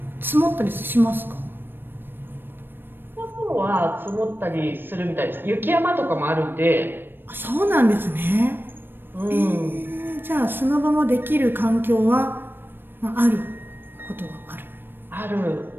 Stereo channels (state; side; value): late; left; 0.097 ms